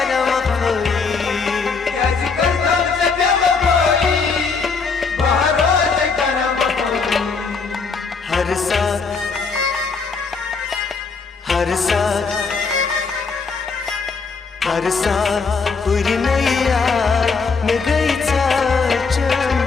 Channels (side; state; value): right; quieter; 4.8 dB